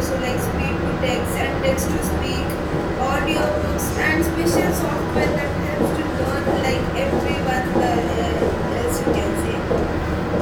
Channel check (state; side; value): identical; both; correlation 1.00